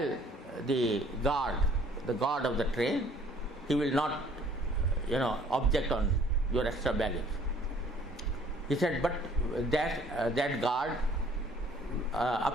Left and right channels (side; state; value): both; normal; correlation 0.57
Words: the guard of the train. He will not, object on your extra baggage. He said, but that guard,